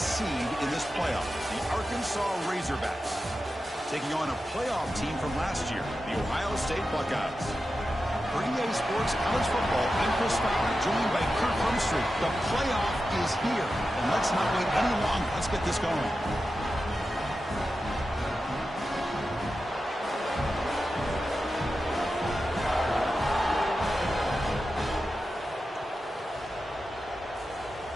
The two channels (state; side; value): normal; both; correlation 0.91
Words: seed in this playoff, the Arkansas Razorbacks, taking on a playoff team from last year, the Ohio State Buckeyes. For EA Sports College Football, I'm Chris Fowler, joined by Kirk Humstreet. The playoff is here, and let's not wait any longer. Let's get this going.